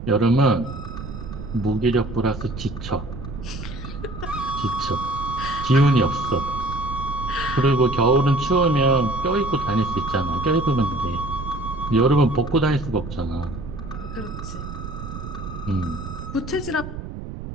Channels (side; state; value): right; noise; rumble, 9 dB below the sound